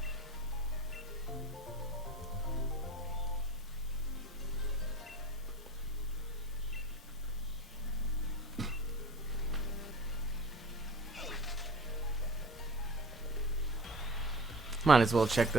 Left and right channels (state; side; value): normal; both; correlation 0.38